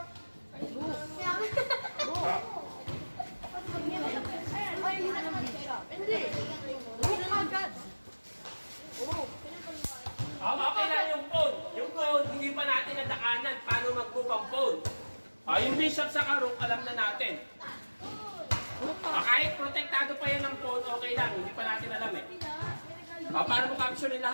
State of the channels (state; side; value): inverted; both; correlation -1.00